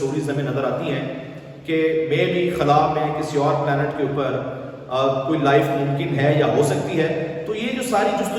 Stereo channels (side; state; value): both; identical; correlation 1.00